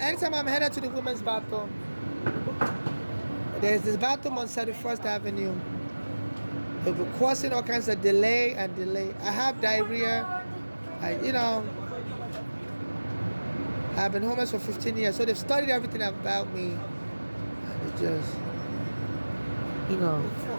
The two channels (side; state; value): both; inverted; correlation -1.00